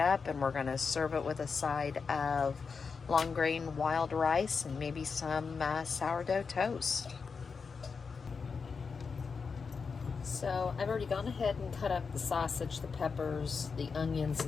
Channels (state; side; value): quieter; right; 5.3 dB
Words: and we're going to serve it with a side of long grain wild rice and maybe some sourdough toast. So I've already gone ahead and cut up the sausage, the peppers, the onions,